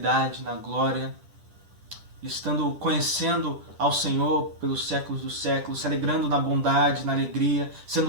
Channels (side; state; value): left; late; 10 ms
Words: na glória, estando conhecendo ao Senhor pelos séculos dos séculos, se alegrando na bondade, na alegria,